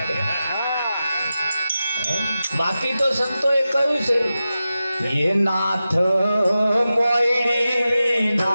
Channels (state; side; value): inverted; both; correlation -0.92